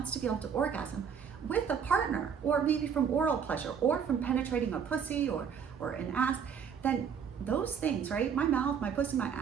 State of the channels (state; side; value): quieter; left; 7.2 dB